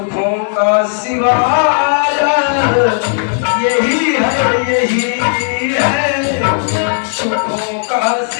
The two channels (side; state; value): right; silent; digital silence